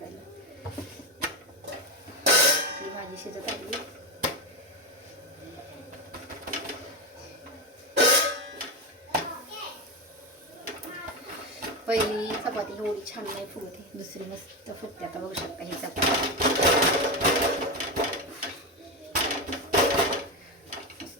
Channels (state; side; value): normal; both; correlation 0.15